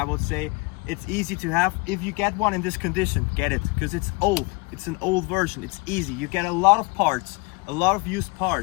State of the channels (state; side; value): quieter; right; 27.7 dB